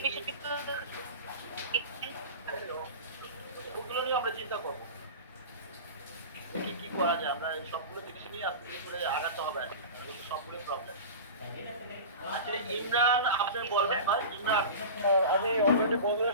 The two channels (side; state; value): both; inverted; correlation -0.31